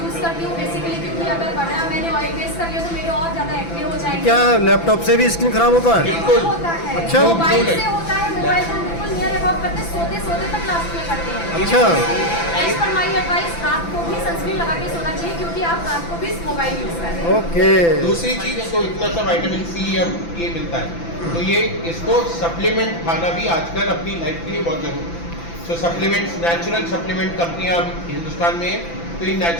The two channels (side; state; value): right; late; 5.9 ms